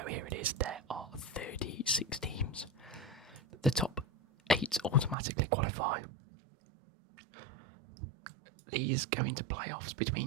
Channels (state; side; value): drops out; left; at 5.2 s